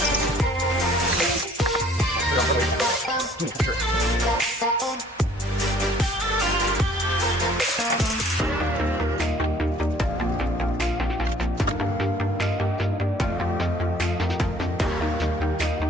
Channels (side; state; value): both; normal; correlation 0.59